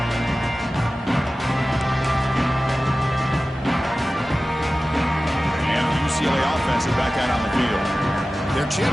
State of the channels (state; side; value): normal; both; correlation 0.95